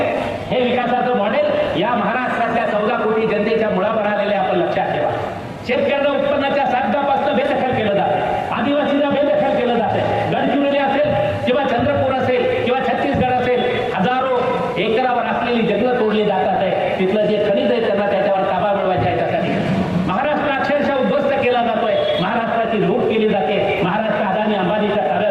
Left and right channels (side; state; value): both; identical; correlation 1.00